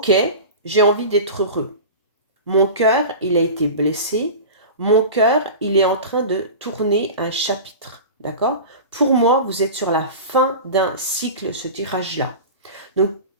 j'ai envie d'être heureux. Mon cœur, il a été blessé. Mon cœur, il est en train de tourner un chapitre. D'accord? Pour moi, vous êtes sur la fin d'un cycle, ce tirage-là. Donc,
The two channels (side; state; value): both; inverted; correlation -0.32